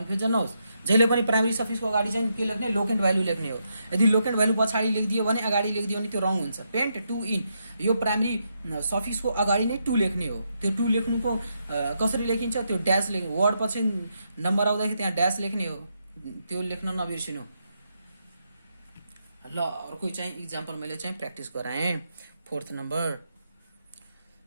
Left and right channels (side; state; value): both; inverted; correlation -0.81